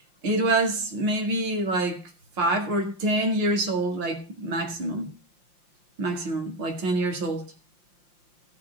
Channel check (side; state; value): left; late; 5.7 ms